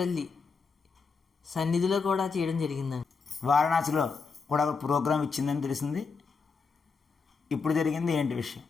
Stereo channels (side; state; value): right; quieter; 4.9 dB